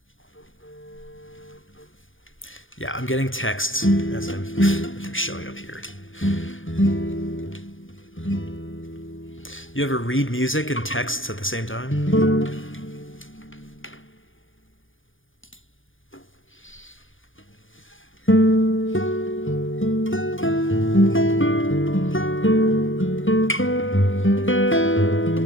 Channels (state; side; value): late; right; 0.58 ms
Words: Yeah, I'm getting texts as they're showing up here. You ever read music and texts at the same time?